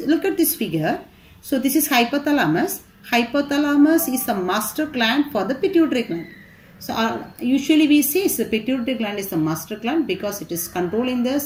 look at this figure, so this is hypothalamus. Hypothalamus is a master gland for the pituitary gland. So usually we say the pituitary gland is the master gland because it is controlling the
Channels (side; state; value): both; identical; correlation 1.00